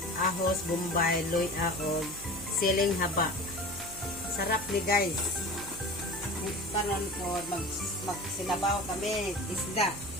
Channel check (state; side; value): noise; right; hum, 15 dB below the sound